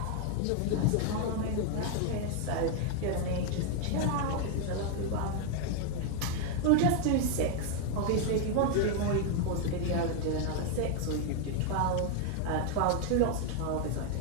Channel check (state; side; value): different; both; correlation 0.01